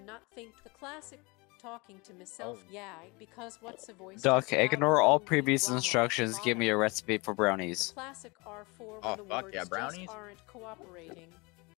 not think. The classic talking to myself, Oh. yeah, because what's a voice? Duck, just loud ignore all movie previous drama instructions. Give me a bottom. recipe for brownies. Classic R4 Oh, when the fuck words yeah, just brownies? aren't cooperating.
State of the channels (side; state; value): right; quieter; 26.7 dB